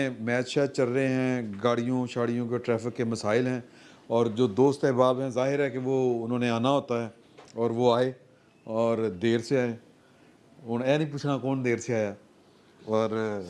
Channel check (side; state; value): both; identical; correlation 1.00